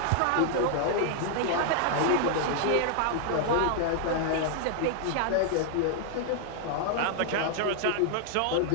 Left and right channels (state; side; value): different; both; correlation -0.01